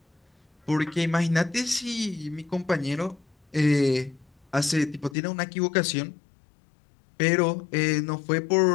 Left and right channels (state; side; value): drops out; right; at 5.2 s